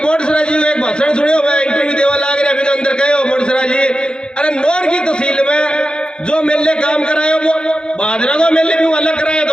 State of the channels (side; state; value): right; late; 0.049 ms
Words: बोडसरा जी एक भाषण सुनियो, मैं इंटरव्यू देवा लाग रहा अभी अंदर कहो बोडसरा जी, अरे नौर की तहसील में जो मेले काम करायो वो बादरा को मेले भी अलग कराया